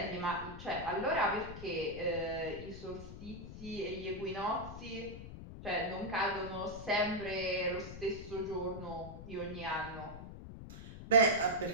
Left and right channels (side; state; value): left; noise; rumble, 11 dB below the sound